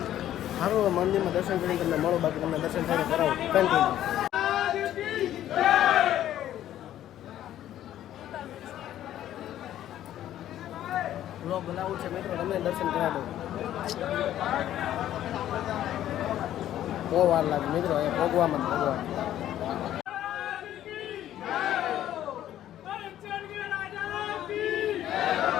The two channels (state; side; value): quieter; right; 12.1 dB